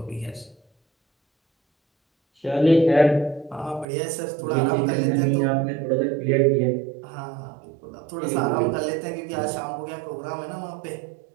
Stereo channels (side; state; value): left; drops out; at 3.9 s